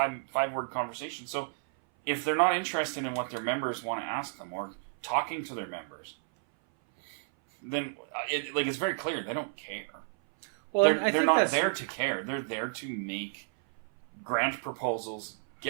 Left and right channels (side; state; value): left; silent; 57 dB below the other